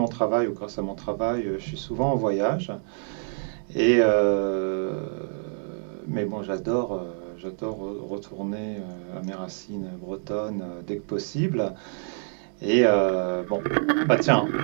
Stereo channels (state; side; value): silent; left; 58 dB below the other